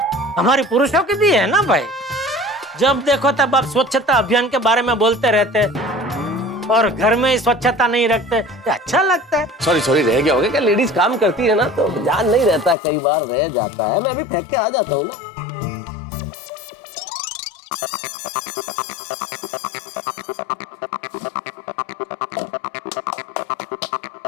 हमारी पुरुषों की भी है ना भाई। जब देखो तब आप स्वच्छता अभियान के बारे में बोलते रहते और घर में ही स्वच्छता नहीं रखते, तो अच्छा लगता है। सॉरी रह गया होगा क्या? लेडीज काम करती है ना तो ध्यान नहीं रहता, कई बार रह जाता है। मैं अभी फेंक के आ जाता हूँ ना।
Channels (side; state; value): right; drops out; at 12.8 s